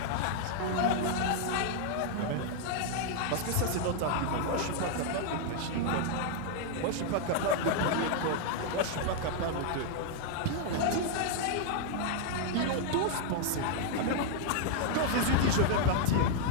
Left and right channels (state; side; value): different; both; correlation 0.00